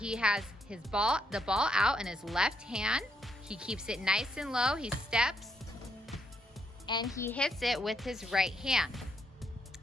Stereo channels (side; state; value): both; normal; correlation 0.76